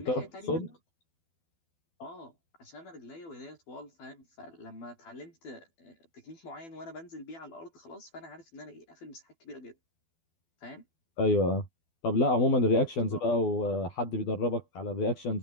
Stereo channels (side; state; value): right; late; 12 ms